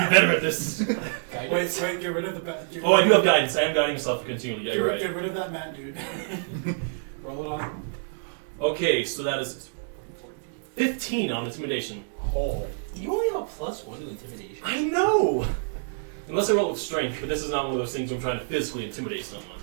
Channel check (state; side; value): silent; left; 59 dB below the other